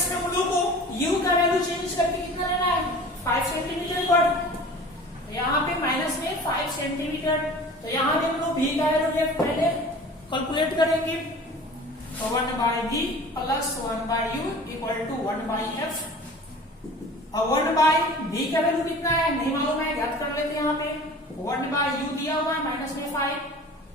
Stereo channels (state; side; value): normal; both; correlation 0.42